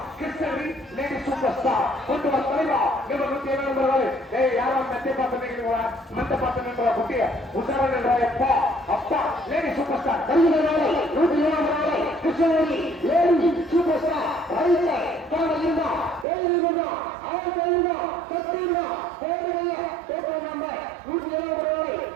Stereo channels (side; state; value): left; drops out; at 16.2 s